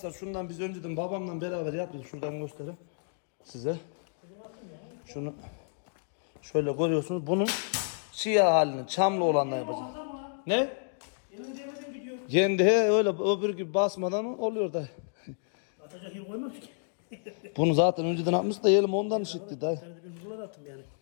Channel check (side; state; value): right; silent; digital silence